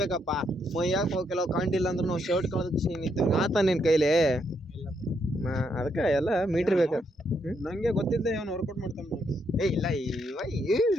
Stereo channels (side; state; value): both; normal; correlation 0.76